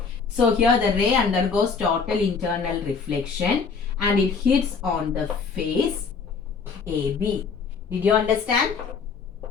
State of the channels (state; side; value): quieter; right; 5.4 dB